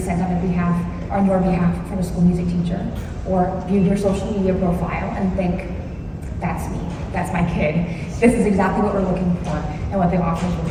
on your behalf from a school music teacher, or view your social media profile and think, that's me, that's my kid. This is exactly what we're looking for, and what they offer is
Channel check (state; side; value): identical; both; correlation 1.00